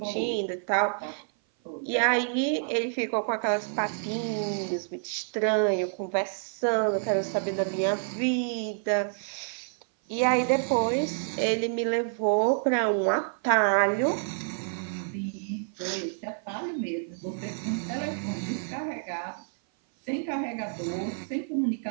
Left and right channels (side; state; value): left; silent; 57 dB below the other